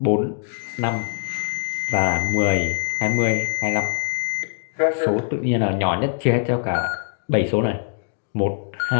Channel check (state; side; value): silent; right; digital silence